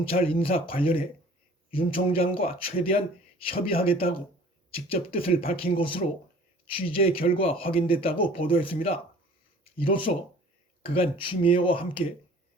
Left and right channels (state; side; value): normal; both; correlation 0.49